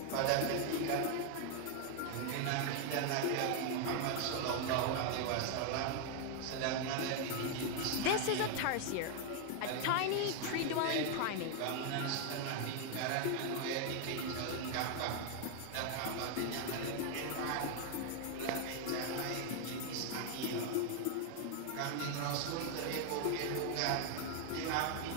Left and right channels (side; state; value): both; different; correlation 0.01